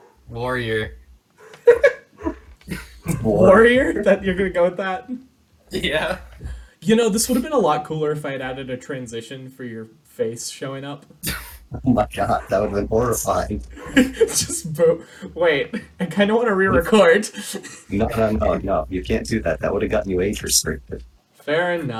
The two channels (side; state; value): both; identical; correlation 1.00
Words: warrior. Warrior? That you're gonna go with that? Yeah. You know, this would have been a lot cooler if I had added a transition for your face showing up. Oh my god, that would have been horrifying. Just wait, I kind of want to re-record. No. You can't do that. That would have gotten you age restricted. Fair